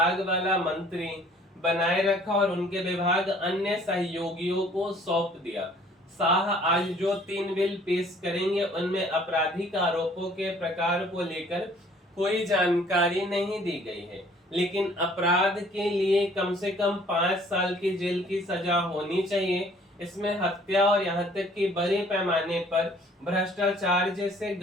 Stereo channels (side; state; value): both; normal; correlation 0.57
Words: वाला मंत्री बनाए रखा और उनके विभाग अन्य सहयोगियों को सौंप दिया। शाह आज जो 3 बिल पेश करेंगे उनमें आपराधिक आरोपों के प्रकार को लेकर कोई जानकारी नहीं दी गई है, लेकिन अपराध के लिए कम से कम 5 साल की जेल की सजा होनी चाहिए। इसमें हत्या और यहाँ तक कि बड़े पैमाने पर भ्रष्टाचार जैसे